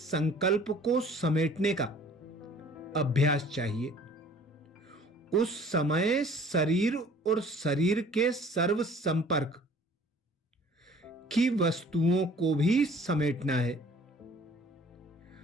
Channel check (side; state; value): both; normal; correlation 0.52